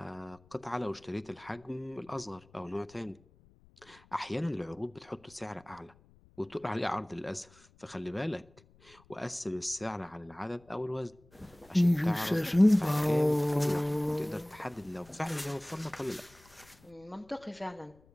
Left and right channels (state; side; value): noise; left; rumble, 28 dB below the sound